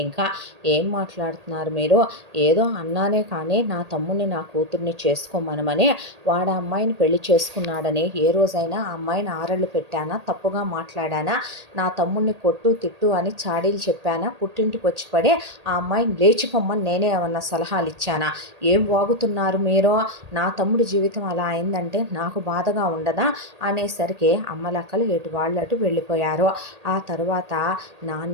ఇంకా ఏం మాట్లాడుతున్నారు మీరు? ఏదో అన్నానే కానీ నా తమ్ముడిని నా కూతుర్ని చేసుకోమనమని, వాడు అమ్మాయిని పెళ్లి చేసుకున్నాడని ఏ రోజైనా ఆ అమ్మాయిని ఆరళ్ళు పెట్టానా? తప్పుగా మాట్లాడానా? నా తమ్ముడిని కొట్టు తిట్టు అని చాడీలు చెప్పానా? పుట్టింటికి వచ్చి పడి ఆ అమ్మాయిని లేచిపోమ్మని నేనే ఏమన్నా సలహాలు ఇచ్చానా? ఏం వాగుతున్నారు మీరు? నా తమ్ముడి జీవితం అలా అయిందంటే నాకు బాధగా ఉండదా అనేసరికి అమ్మలక్కలు ఎటు వాళ్ళు అటు వెళ్ళిపోయారు. ఆ తరువాత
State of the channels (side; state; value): left; late; 1.8 ms